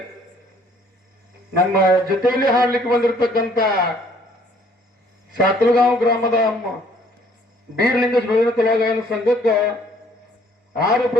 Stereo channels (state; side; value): normal; both; correlation 0.60